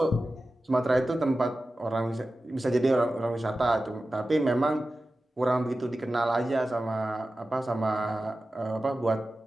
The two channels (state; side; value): normal; both; correlation 0.94